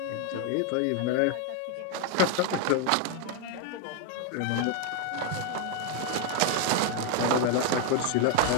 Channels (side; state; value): both; different; correlation 0.01